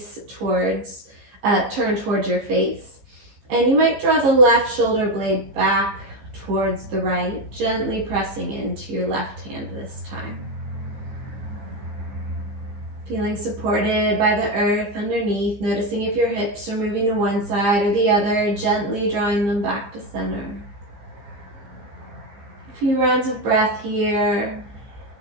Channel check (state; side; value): late; left; 15 ms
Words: towards your face. And you might draw the left shoulder blade back towards the right, gently pressing into your left hand this time. Feeling supported by the earth underneath, noticing if your hips are moving to one side or the other, gently drawing them back to center. A few rounds of breath here.